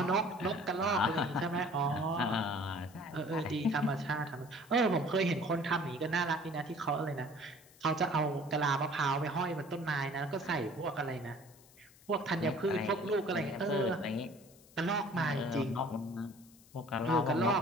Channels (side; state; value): left; noise; hiss, 25 dB below the sound